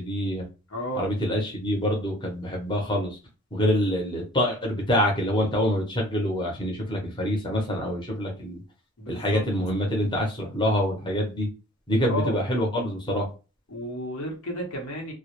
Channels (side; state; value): both; normal; correlation 0.51